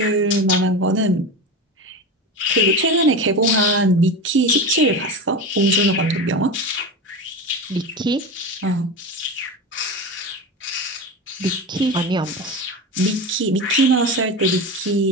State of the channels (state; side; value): normal; both; correlation 0.24